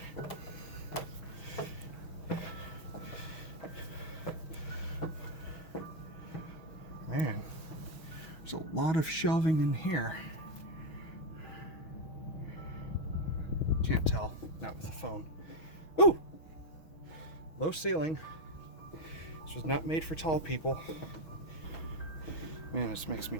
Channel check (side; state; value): right; late; 6.3 ms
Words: Man, there's a lot of shelving in here. Can't tell, not with the phone. Ooh! Low ceiling. This was not made for tall people. Man, this makes me